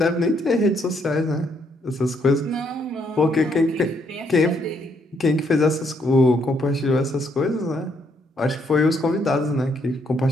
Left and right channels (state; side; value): normal; both; correlation 0.72